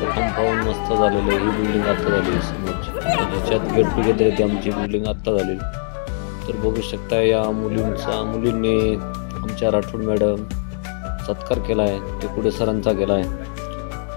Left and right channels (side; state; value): right; silent; digital silence